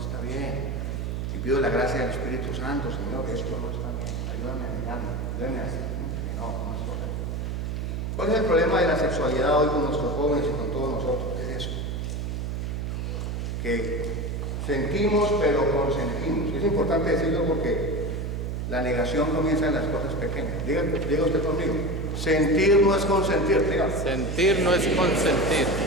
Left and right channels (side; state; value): right; noise; hum, 3 dB below the sound